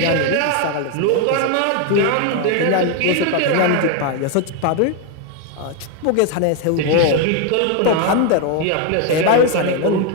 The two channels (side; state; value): both; different; correlation 0.01